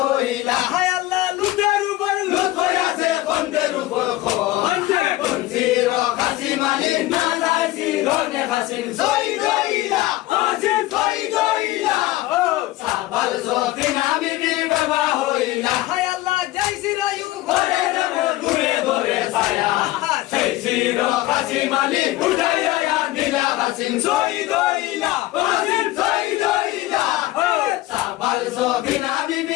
হইলা হায় আল্লাহ লুটের উপর লুট হইয়াছে বন্ধের উপর কুঞ্চির কাসিম আলী না যাইছি ধনে কাসিম শহীদ হইলা কাসিম শহীদ হইলা সাবাল সফিনা বিবির বেবা হইলা হায় আল্লাহ জয় রায়ু ঘরে যাব দূরে দূরে ছায়া সেই চির কাসিম আলী উঠাইয়া দিলা কাসিম শহীদ হইলা কাসিম শহীদ হইলা সাবাল সফিনা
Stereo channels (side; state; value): right; quieter; 17.3 dB